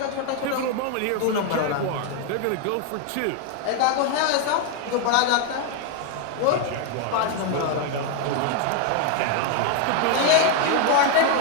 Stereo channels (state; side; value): different; both; correlation 0.00